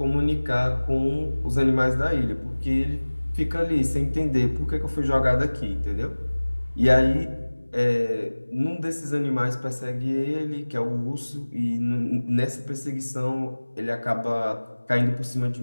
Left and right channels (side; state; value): both; inverted; correlation -1.00